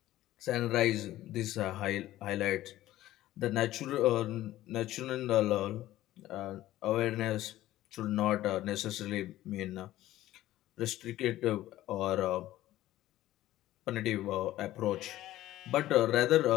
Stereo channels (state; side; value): quieter; right; 14.9 dB